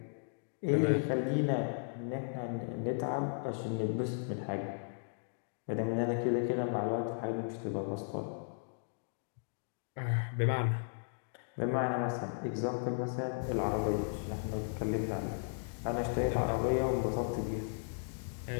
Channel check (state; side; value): silent; right; digital silence